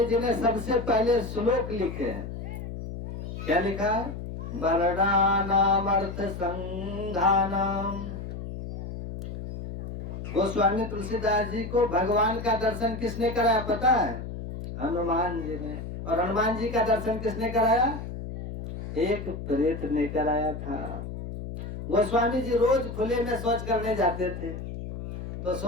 जी ने सबसे पहले श्लोक लिखे हैं। क्या लिखा है? वर्णानाम अर्थ संघानाम। गोस्वामी तुलसीदास जी को भगवान का दर्शन किसने कराया पता है? हनुमान जी ने। और हनुमान जी का दर्शन किसने कराया? एक प्रेत ने कराया था। गोस्वामी जी रोज खुले में शौच करने जाते थे, तो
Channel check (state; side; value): noise; left; hum, 8 dB below the sound